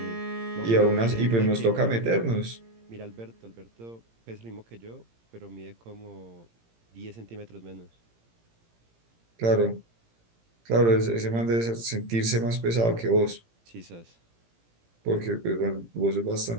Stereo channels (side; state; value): left; late; 17 ms